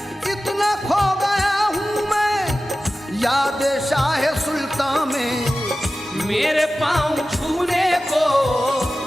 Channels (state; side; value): normal; both; correlation 0.95